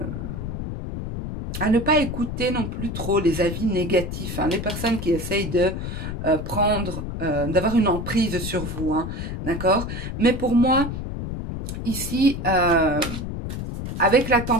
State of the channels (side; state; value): left; noise; rumble, 5 dB below the sound